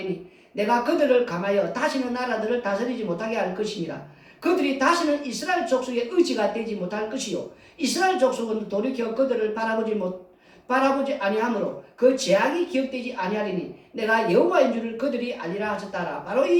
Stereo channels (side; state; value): both; identical; correlation 1.00